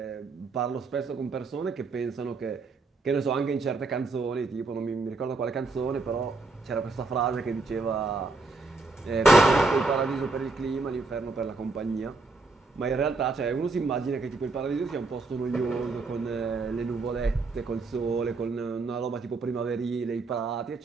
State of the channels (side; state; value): left; quieter; 3.7 dB